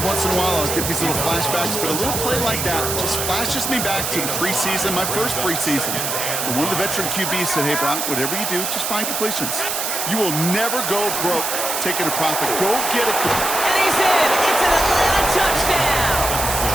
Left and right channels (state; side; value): noise; right; hiss, 2 dB below the sound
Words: once in a while I'll get these little flashbacks, but a little play like that just flashes me back to the preseason, my first preseason. And one of the veteran QBs said, hey, Brock, whatever you do, just find completions. You will never go broke taking a profit. Go get it. And he's in. It's an Atlanta touchdown.